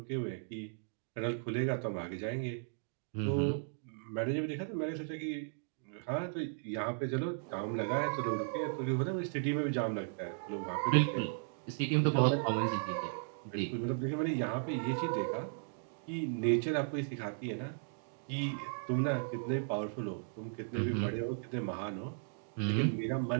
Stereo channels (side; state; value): left; silent; digital silence